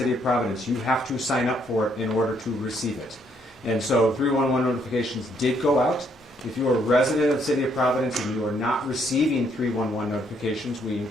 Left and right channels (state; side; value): normal; both; correlation 0.70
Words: of Providence, you have to sign up for it in order to receive it. And so 311 notifications did go out. If you are a resident of the city of Providence and you are not receiving 311 notifications, we